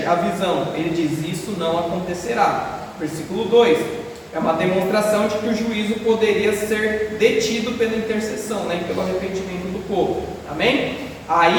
a visão, ele diz: isso não acontecerá. Versículo 2, é uma demonstração de que o juízo poderia ser detido pela intercessão, né, pelo arrependimento do povo. Amém?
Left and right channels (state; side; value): identical; both; correlation 1.00